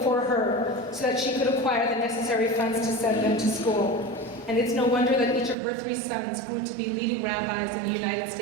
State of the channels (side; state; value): left; drops out; at 5.6 s